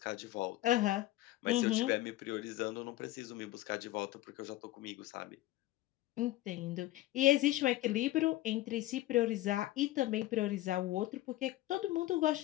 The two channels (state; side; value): quieter; right; 16.2 dB